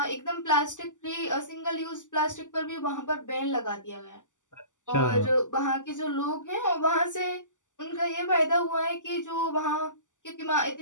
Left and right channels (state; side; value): late; right; 0.87 ms